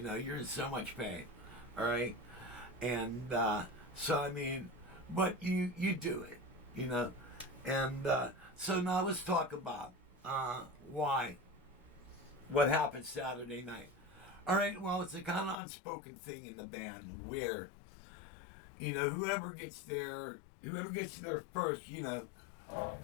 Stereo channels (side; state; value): right; drops out; at 15.6 s